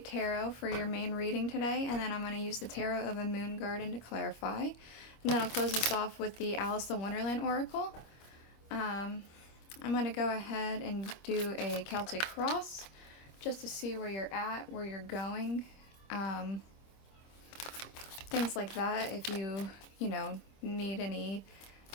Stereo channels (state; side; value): late; right; 25 ms